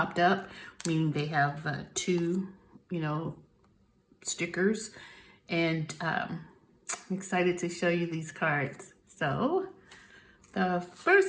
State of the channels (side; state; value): both; identical; correlation 1.00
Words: up, meaning they have two, stickers, and I'm excited to show you these cards. So the